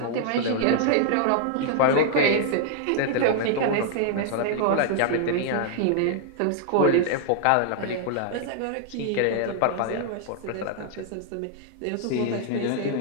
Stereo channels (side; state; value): both; different; correlation 0.00